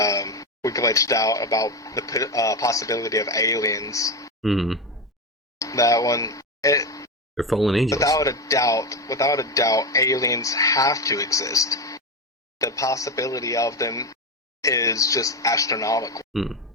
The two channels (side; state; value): both; normal; correlation 0.15